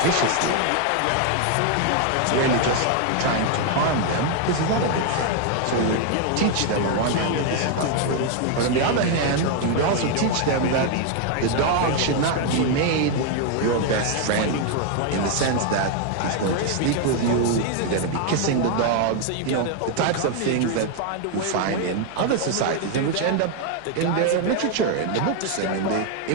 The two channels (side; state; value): both; different; correlation 0.01